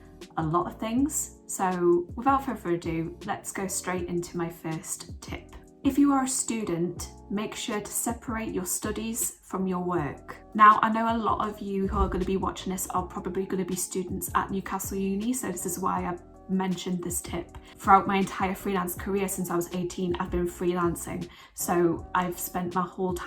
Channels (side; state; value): both; identical; correlation 1.00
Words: a lot of things. So without further ado, let's go straight into my first tip. If you are a student, make sure to separate your studies from your work. Now, I know a lot of you who are going to be watching this are probably going to be students at Newcastle Uni, so this is why I mentioned this tip. Throughout my entire freelance career since I was 18, I've been freelancing. So I've spent my whole